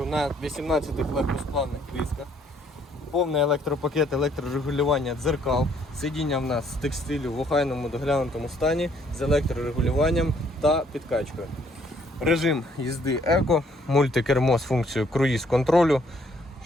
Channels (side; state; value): both; normal; correlation 0.65